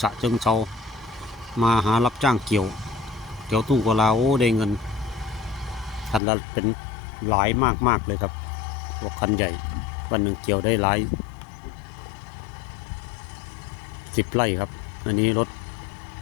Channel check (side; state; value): right; drops out; at 6.2 s